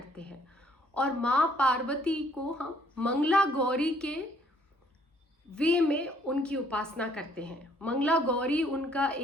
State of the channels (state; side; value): normal; both; correlation 0.64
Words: हैं और माँ पार्वती को हम मंगला गौरी के वे में उनकी उपासना करते हैं। मंगला गौरी उनका